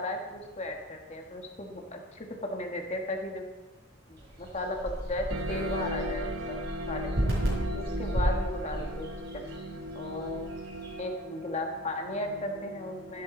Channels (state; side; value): normal; both; correlation 0.43